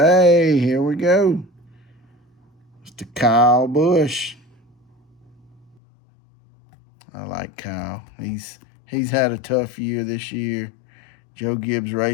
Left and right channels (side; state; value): right; drops out; at 5.8 s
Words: here we go. Mr. Kyle Busch. I like Kyle. He's had a tough year this year. Joe Gibbs